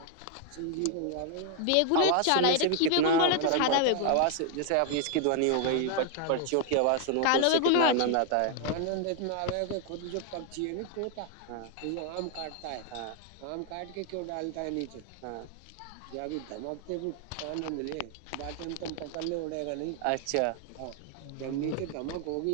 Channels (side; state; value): both; different; correlation 0.00